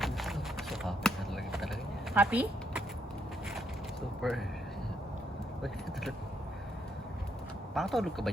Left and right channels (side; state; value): both; normal; correlation 0.75